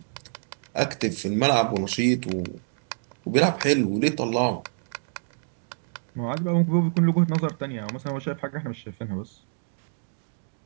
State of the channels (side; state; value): left; silent; digital silence